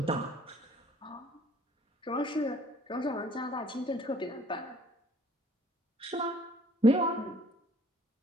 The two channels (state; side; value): normal; both; correlation 0.57